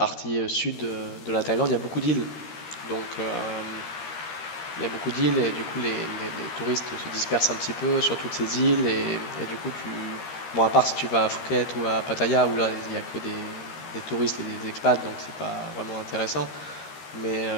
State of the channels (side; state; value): right; late; 13 ms